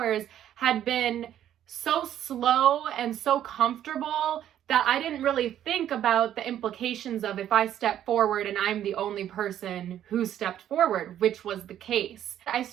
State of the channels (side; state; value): left; quieter; 11.0 dB